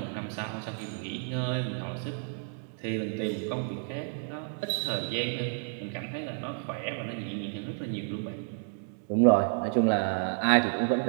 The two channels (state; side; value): silent; left; 57 dB below the other